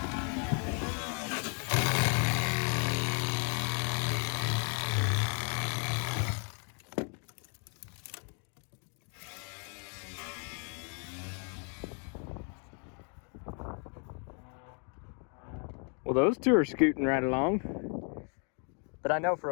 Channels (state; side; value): quieter; right; 39.4 dB